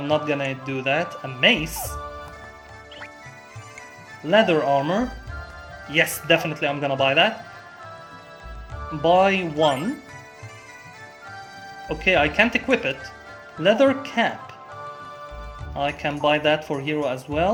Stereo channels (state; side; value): identical; both; correlation 1.00